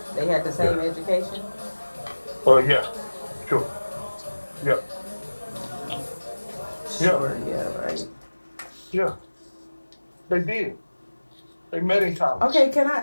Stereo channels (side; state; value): both; inverted; correlation -1.00